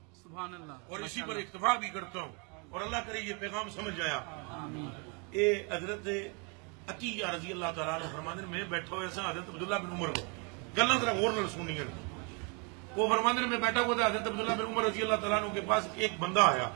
سبحان اللہ, اور اسی پر اکتفا بھی کرتا ہوں, اور اللہ کرے یہ پیغام سمجھ آیا. اے حضرت عطیہ رضی اللہ تعالیٰ عنہ فرماندے میں بیٹھا ہوا سا حضرت عبداللہ بن عمر کو گلاں ذرا غور نال سننی ہیں. وہ فرماندے میں بیٹھا ہوا تھا حضرت عبداللہ بن عمر رضی اللہ تعالیٰ عنہ کے پاس ایک بندہ آیا.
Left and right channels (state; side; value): quieter; left; 34.0 dB